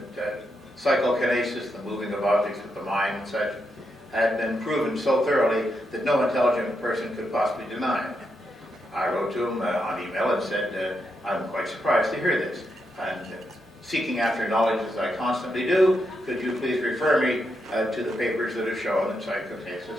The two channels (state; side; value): normal; both; correlation 0.83